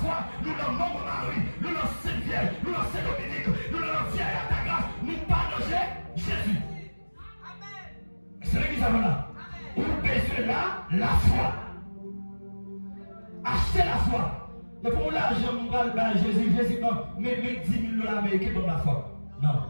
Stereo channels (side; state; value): both; inverted; correlation -1.00